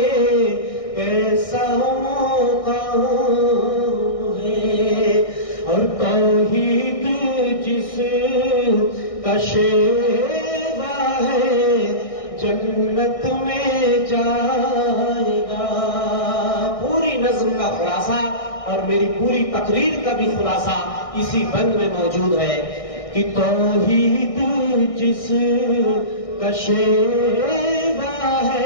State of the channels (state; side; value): late; right; 1.6 ms